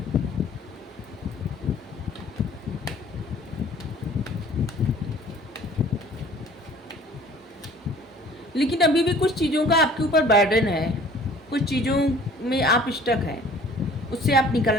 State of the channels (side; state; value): both; normal; correlation 0.50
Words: लेकिन अभी भी कुछ चीज़ों का आपके ऊपर बर्डन है, कुछ चीज़ों में आप स्टक हैं, उससे आप